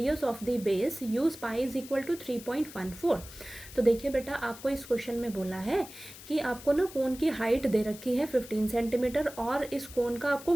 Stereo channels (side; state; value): left; noise; hiss, 16 dB below the sound